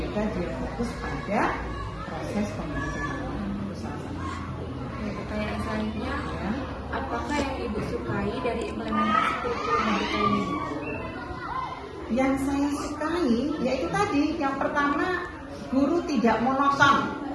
dia fokus pada proses pembelajaran. Itu salah satu. Pertanyaan selanjutnya, apakah yang Ibu sukai dari implementasi kurikulum merdeka ini? Yang saya sukai yaitu tadi, yang pertama guru tidak monoton.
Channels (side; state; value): both; identical; correlation 1.00